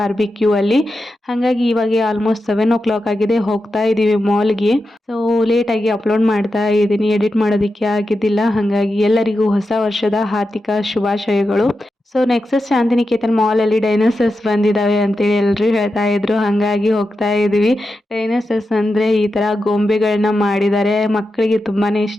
ಅಲ್ಲಿ. ಹಾಗಾಗಿ ಇವಾಗ ಆಲ್ಮೋಸ್ಟ್ 7 o'clock ಆಗಿದೆ. ಹೋಗ್ತಾ ಇದ್ದೀವಿ ಮಾಲ್ಗೆ. ಸೊ ಲೇಟಾಗಿ ಅಪ್ಲೋಡ್ ಮಾಡ್ತಾ ಇದ್ದೀನಿ, ಎಡಿಟ್ ಮಾಡೋದಕ್ಕೆ ಆಗಿದ್ದಿಲ್ಲ. ಹಾಗಾಗಿ ಎಲ್ಲರಿಗೂ ಹೊಸ ವರ್ಷದ ಹಾರ್ದಿಕ ಶುಭಾಶಯಗಳು. ಸೊ ನೆಕ್ಸಸ್ ಶಾಂತಿನಿಕೇತನ್ ಮಾಲಲ್ಲಿ ಡೈನೋಸರ್ಸ್ ಬಂದಿದ್ದಾವೆ ಅಂತೇಳಿ ಎಲ್ಲರೂ ಹೇಳ್ತಾ ಇದ್ರು. ಹಾಗಾಗಿ ಹೋಗ್ತಾ ಇದ್ದೀವಿ. ಡೈನೋಸರ್ಸ್ ಅಂದರೆ ಈ ಥರ ಗೊಂಬೆಗಳನ್ನ ಮಾಡಿದ್ದಾರೆ, ಮಕ್ಕಳಿಗೆ ತುಂಬಾ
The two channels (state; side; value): normal; both; correlation 0.89